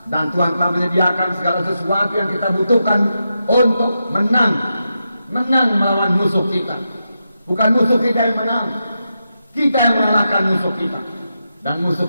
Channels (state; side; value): inverted; both; correlation -0.87